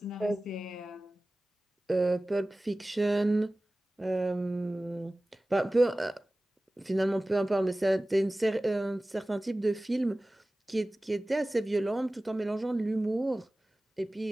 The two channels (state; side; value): normal; both; correlation 0.97